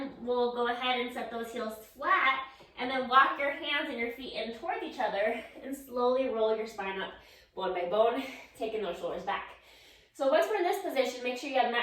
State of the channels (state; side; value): identical; both; correlation 1.00